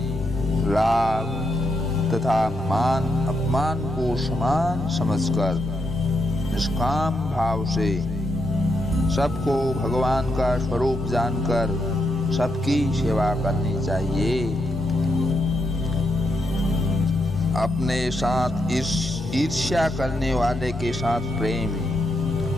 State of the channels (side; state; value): both; normal; correlation 0.81